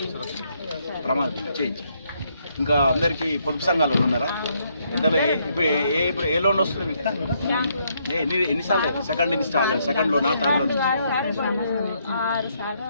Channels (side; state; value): both; inverted; correlation -0.73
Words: చేయించి. ఇంకా అందరికీ పొదుపు సంఘాలు ఉన్నారా? ఎంతలో ఇప్పుడు ఏ లోన్ వస్తుంది మీకు? ఎన్నిసార్లు? సెకండ్ లోనా, థర్డ్ లోన్?